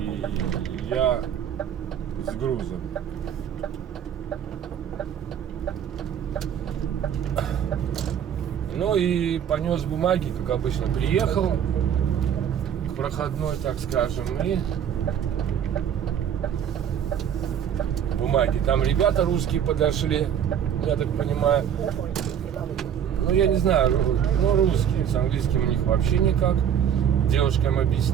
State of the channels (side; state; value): left; quieter; 8.9 dB